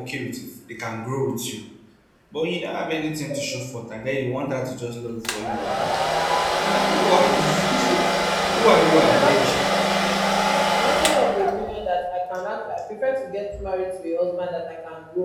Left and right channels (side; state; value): both; identical; correlation 1.00